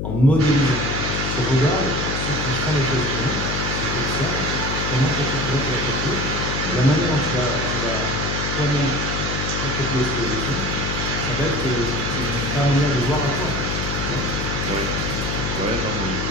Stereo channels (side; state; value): left; noise; hum, 2 dB below the sound